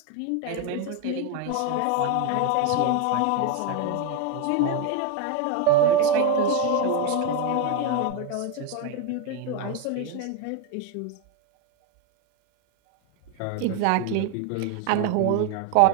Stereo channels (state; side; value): different; both; correlation 0.01